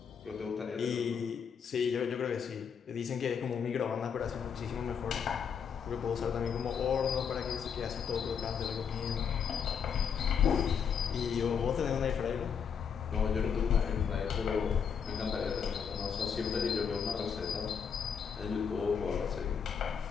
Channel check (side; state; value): right; quieter; 7.0 dB